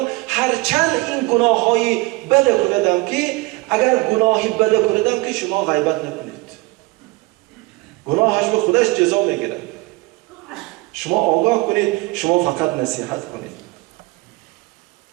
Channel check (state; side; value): quieter; left; 23.5 dB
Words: هرچند این گناه های بده کردم که اگر گناهی بده کردم که شما غیبت نکنید، گناهش به خودش جزا میگیره. شما آگاه کنید، شما فقط نصیحت کنید.